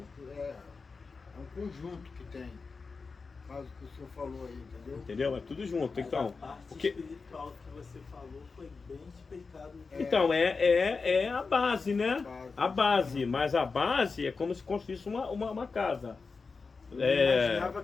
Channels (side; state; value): right; quieter; 4.5 dB